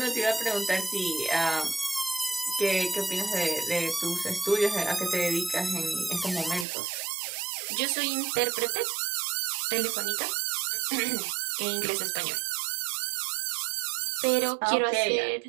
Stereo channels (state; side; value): drops out; left; at 6.7 s